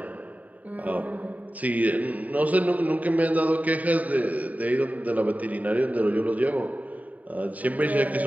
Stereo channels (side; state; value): left; late; 0.072 ms